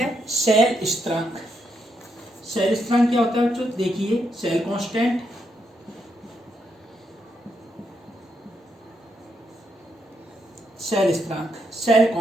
शेल स्थिरांक। शेल स्थिरांक क्या होता है बच्चों? देखिए, शेल कांस्टेंट, शेल स्थिरांक, शेल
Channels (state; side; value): normal; both; correlation 0.79